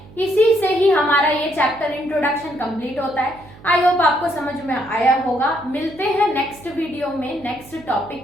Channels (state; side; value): noise; right; hum, 22 dB below the sound